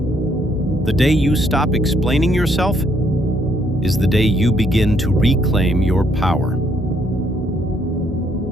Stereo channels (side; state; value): both; normal; correlation 0.70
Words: The day you stop explaining yourself is the day you begin to reclaim your power.